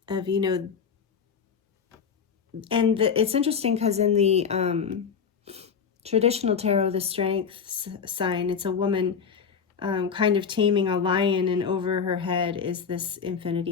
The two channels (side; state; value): right; quieter; 6.4 dB